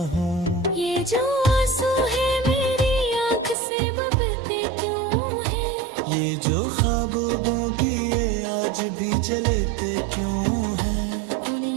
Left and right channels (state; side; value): drops out; left; at 3.6 s